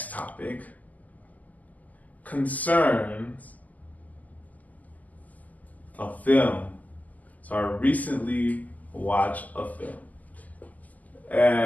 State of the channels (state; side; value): late; right; 0.079 ms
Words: topic concerns a film. So I recently watched a film.